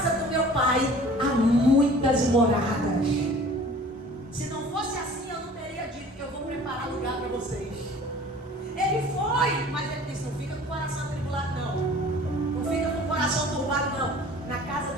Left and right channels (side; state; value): both; normal; correlation 0.47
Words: do meu pai há muitas moradas. Se não fosse assim, eu não teria dito que eu vou preparar lugar para vocês. Ele foi, mas ele disse: não fica com o coração atribulado não. Não fica com o coração turbado não. Na casa